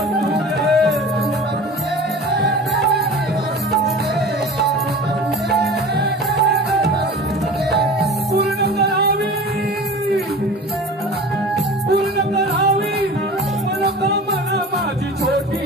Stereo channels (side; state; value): both; normal; correlation 0.37